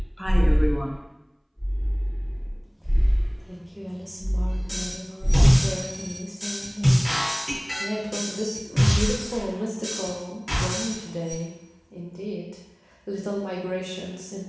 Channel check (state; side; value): identical; both; correlation 1.00